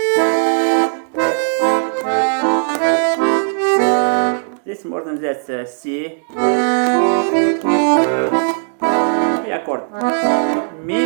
Здесь можно взять си и аккорд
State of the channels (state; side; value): silent; left; digital silence